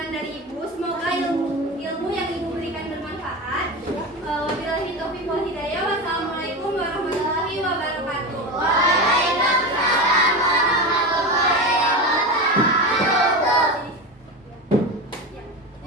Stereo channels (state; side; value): normal; both; correlation 0.22